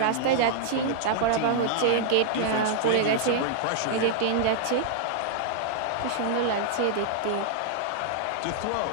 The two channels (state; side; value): different; both; correlation -0.01